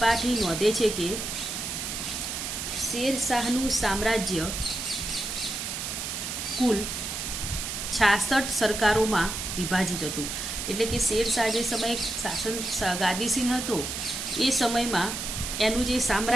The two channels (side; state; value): right; noise; hiss, 4 dB below the sound